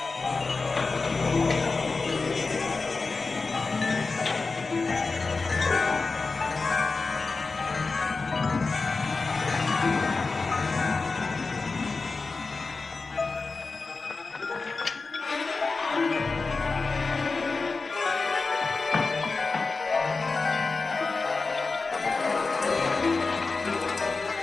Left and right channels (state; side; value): quieter; right; 4.0 dB